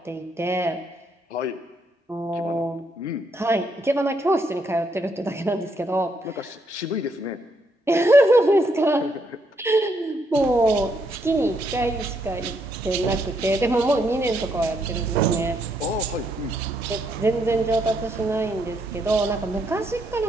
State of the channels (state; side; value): normal; both; correlation 0.75